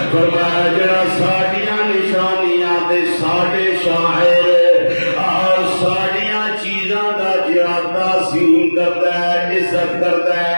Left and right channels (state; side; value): inverted; both; correlation -1.00